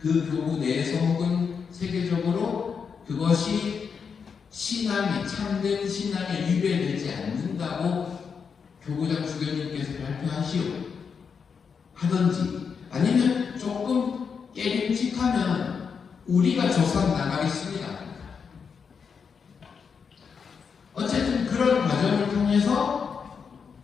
교구 내에서 혹은 세계적으로 그것이 참된 신앙에 위배되지 않는다고 교구장 주교님께서 발표하시오 하든지, 아니면 조금 깨림칙하면 우리가 조사 나가겠습니다. 어쨌든 그런 과정을 통해서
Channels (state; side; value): quieter; right; 6.1 dB